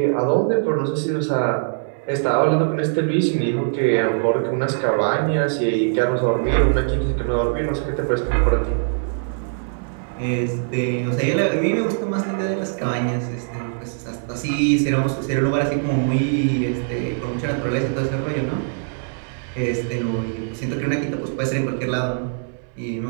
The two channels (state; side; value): silent; left; 61 dB below the other